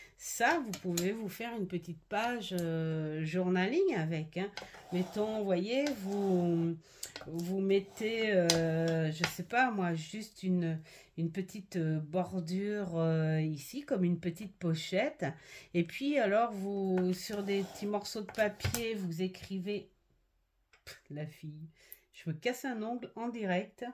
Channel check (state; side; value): identical; both; correlation 1.00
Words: ça, vous pouvez vous faire une petite page journaling avec. Hein. Mettons, vous voyez, vous mettez, je sais pas moi, juste une petite bordure ici, comme une petite pochette. Et puis alors, vous, sur des petits morceaux de papier, vous écrivez... La fille, je me casse un ongle en direct.